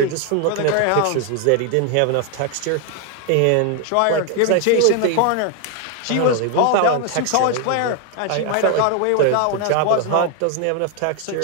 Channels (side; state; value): both; different; correlation 0.00